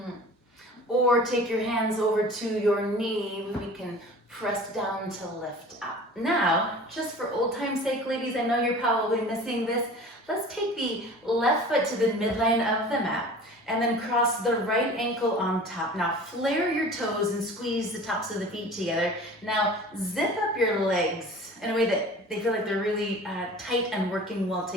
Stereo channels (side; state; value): both; normal; correlation 0.42